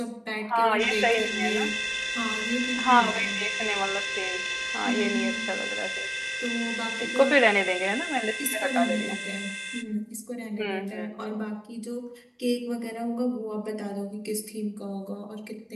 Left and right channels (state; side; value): identical; both; correlation 1.00